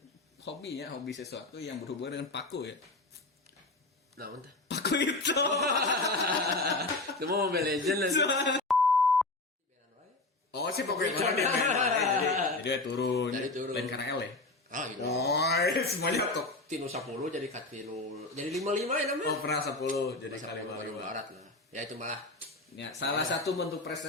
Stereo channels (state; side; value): quieter; right; 3.1 dB